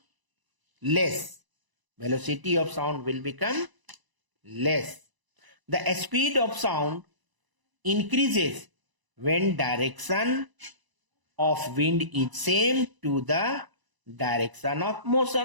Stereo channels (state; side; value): late; left; 1.0 ms